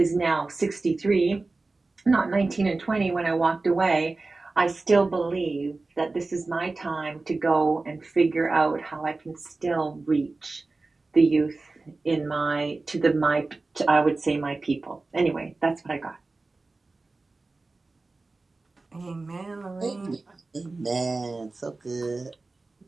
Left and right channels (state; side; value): quieter; left; 3.5 dB